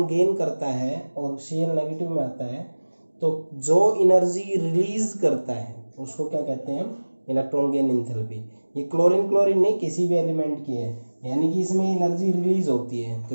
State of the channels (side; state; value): both; inverted; correlation -1.00